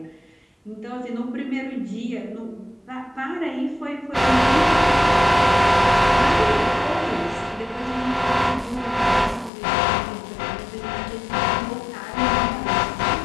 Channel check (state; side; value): drops out; right; at 9.5 s